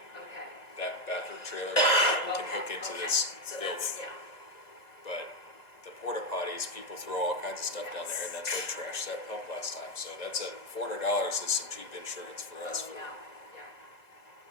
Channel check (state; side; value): late; right; 1.9 ms